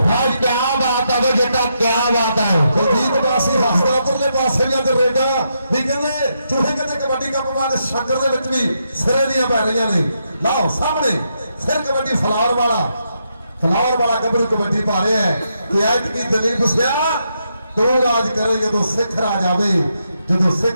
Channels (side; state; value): both; inverted; correlation -0.81